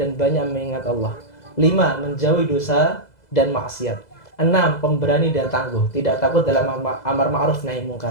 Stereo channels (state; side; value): late; right; 2.0 ms